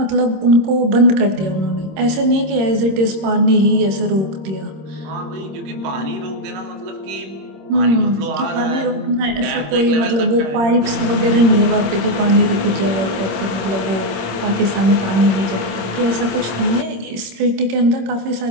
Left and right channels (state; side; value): late; left; 26 ms